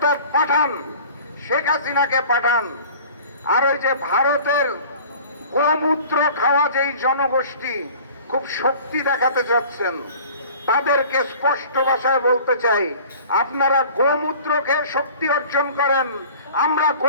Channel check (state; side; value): inverted; both; correlation -0.45